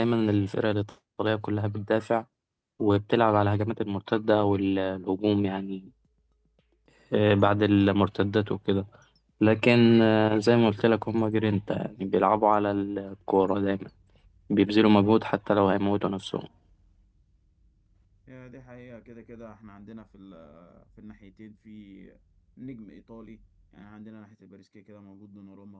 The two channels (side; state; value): both; identical; correlation 1.00